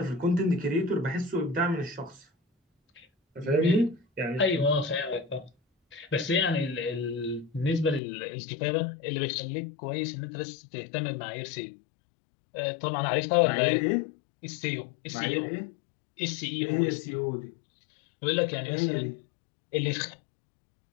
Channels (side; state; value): right; drops out; at 8.0 s